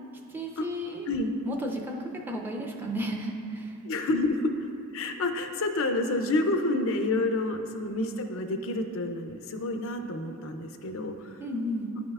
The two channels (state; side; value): normal; both; correlation 0.31